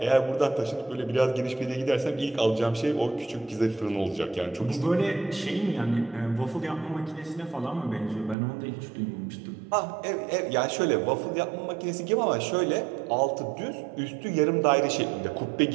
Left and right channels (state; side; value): drops out; left; at 8.3 s